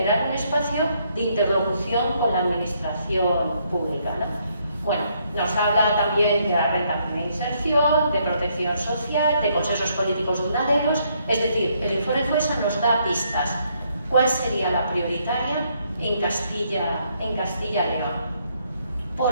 un espacio de interlocución con la administración pública, ¿no? Bueno, nos habla también de la renta de inserción, de protección social, de consensos políticos duraderos, es decir, el informe FOESA nos da pistas. ¿Cuál sería la prioritaria en Castilla y León?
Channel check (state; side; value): inverted; both; correlation -0.72